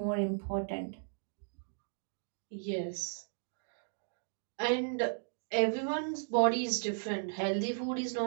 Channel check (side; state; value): left; silent; digital silence